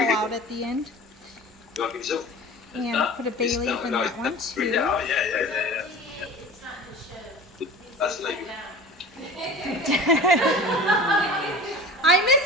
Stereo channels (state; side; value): normal; both; correlation 0.38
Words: out at the end. And put a bay leaf in that one too. Oh, yeah. That's like I missed